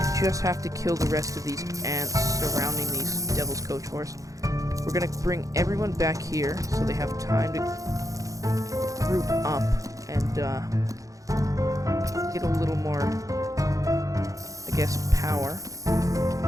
just have to kill the rest of these ants surrounding these Devil's Coach Horse. We're gonna bring everyone back here so they have time to group up and get a little more, I guess, power.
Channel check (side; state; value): left; late; 0.16 ms